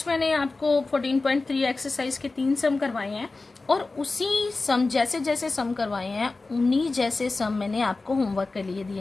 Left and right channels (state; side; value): quieter; right; 3.5 dB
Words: मैंने आपको 14.3 एक्सरसाइज के 3 सम करवाए हैं, और उसी सम जैसे जैसे सम करवाए हैं उन्हीं जैसे सम मैंने आपको होमवर्क के लिए